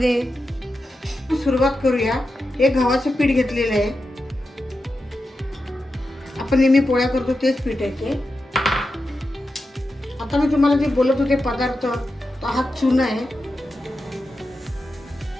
सुरुवात करूया. हे गव्हाचं पीठ घेतलेलं आहे. आपण नेहमी पोळ्या करतो तेच पीठ आहे ते. आता मी तुम्हाला जे बोलत होते पदार्थ, तो हा चुना आहे.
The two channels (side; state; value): both; normal; correlation 0.90